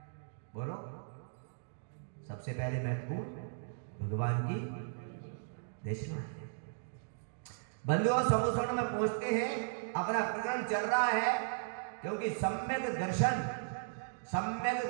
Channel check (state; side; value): silent; left; digital silence